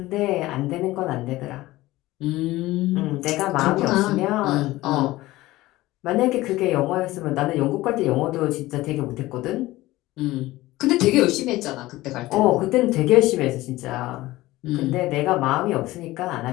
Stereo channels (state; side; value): quieter; right; 17.9 dB